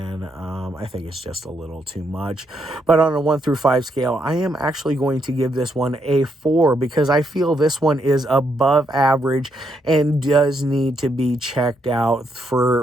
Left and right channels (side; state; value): both; normal; correlation 0.77